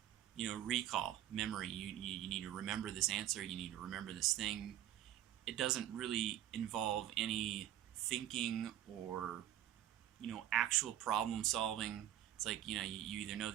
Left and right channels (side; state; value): left; quieter; 12.1 dB